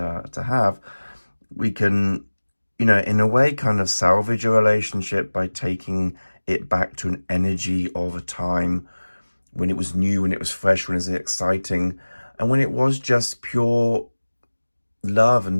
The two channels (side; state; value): both; inverted; correlation -1.00